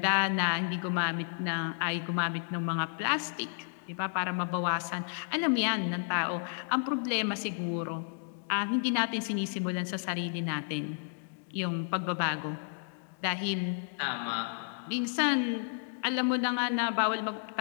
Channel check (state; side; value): silent; right; digital silence